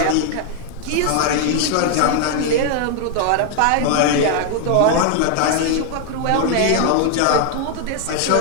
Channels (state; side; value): different; both; correlation 0.00